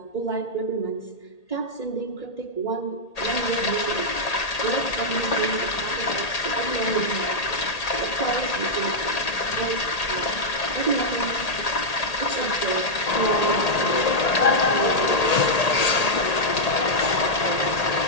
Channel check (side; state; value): right; late; 1.8 ms